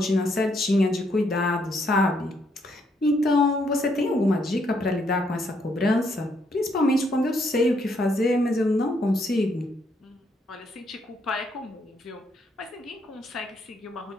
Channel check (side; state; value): both; normal; correlation 0.73